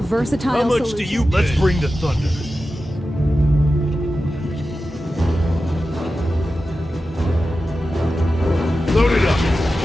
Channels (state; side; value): normal; both; correlation 0.93